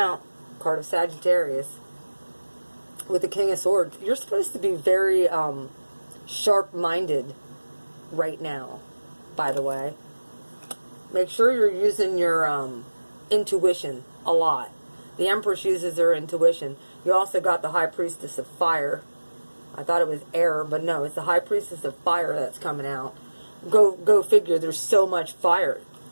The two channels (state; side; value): inverted; both; correlation -1.00